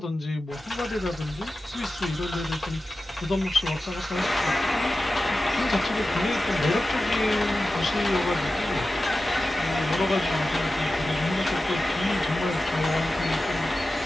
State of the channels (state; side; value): normal; both; correlation 0.94